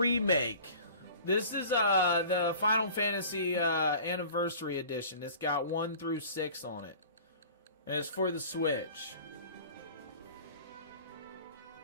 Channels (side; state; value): both; inverted; correlation -0.44